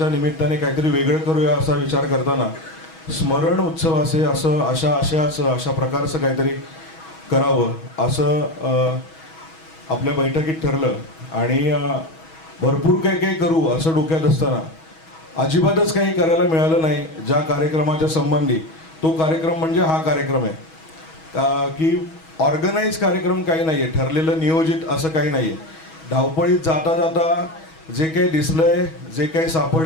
निमित्ताने काहीतरी वेगळं करूया असा विचार करताना स्मरण उत्सवाचे असं अशा प्रकारचं काहीतरी करावं असं आपल्या बैठकीत ठरलं. आणि भरपूर काही काही करू असं डोक्यात असताना अजिबातच काही करायला मिळालं नाही ज्या कार्यक्रमाच्या संबंधी. तो कार्यक्रम म्हणजे हा कार्यक्रम आहे की ऑर्गनाईज कार्यक्रम काही नाही आहे, ठरलेलं नियोजित असं काही नाही आहे. धावपळीत जाता जाता जे काही दिसलंय, जे काही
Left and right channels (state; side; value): late; right; 6.2 ms